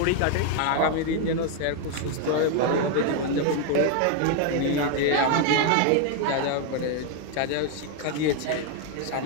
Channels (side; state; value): both; different; correlation 0.00